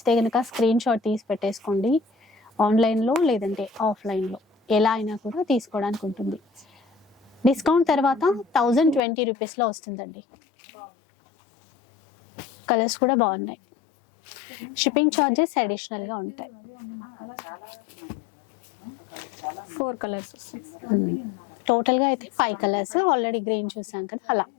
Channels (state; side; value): drops out; right; at 9.0 s